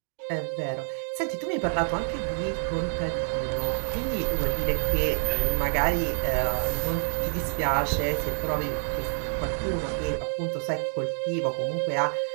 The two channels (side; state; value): left; silent; digital silence